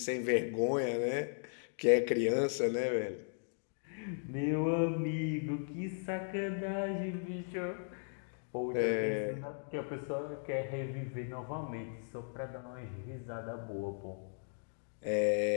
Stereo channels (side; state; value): right; silent; digital silence